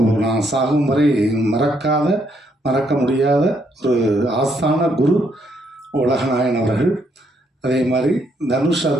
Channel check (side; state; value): both; normal; correlation 0.73